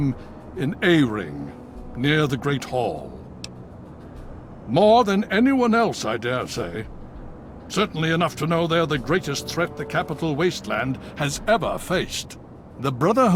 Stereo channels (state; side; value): identical; both; correlation 1.00